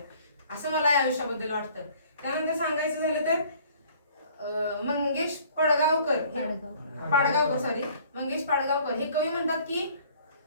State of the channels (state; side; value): inverted; both; correlation -0.55